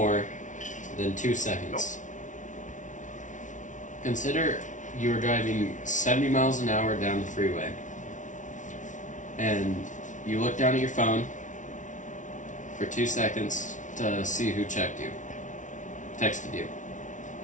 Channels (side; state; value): right; late; 0.37 ms